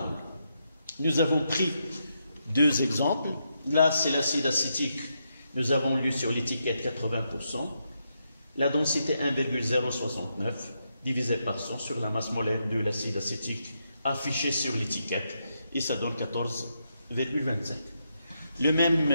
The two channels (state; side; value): inverted; both; correlation -0.82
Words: Nous avons pris deux exemples. Là, c'est l'acide acétique. Nous avons lu sur l'étiquette 80%. La densité 1,069 divisé par 100 sur la masse molaire de l'acide acétique affichée sur l'étiquette et ça donne 14,25. Le